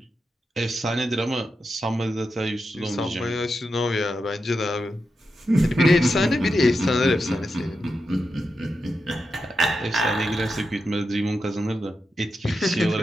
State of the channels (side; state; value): both; normal; correlation 0.88